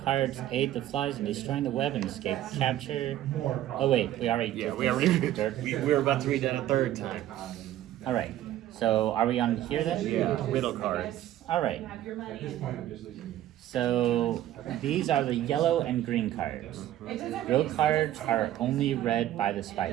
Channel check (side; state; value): left; quieter; 13.1 dB